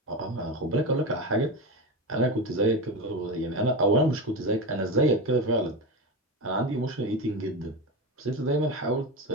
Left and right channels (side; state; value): both; normal; correlation 0.20